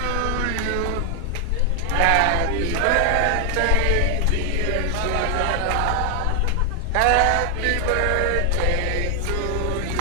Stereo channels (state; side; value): different; both; correlation 0.00